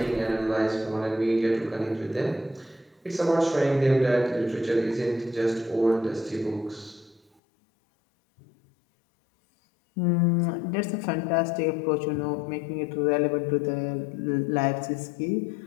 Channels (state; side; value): drops out; right; at 7.3 s